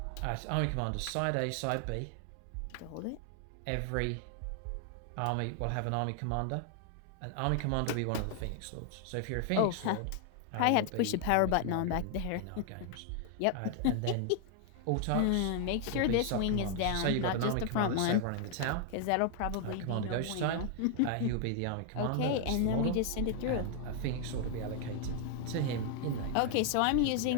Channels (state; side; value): different; both; correlation 0.00